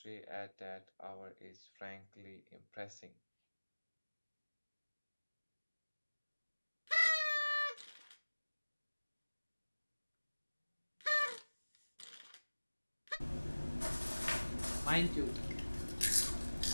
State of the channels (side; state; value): both; inverted; correlation -1.00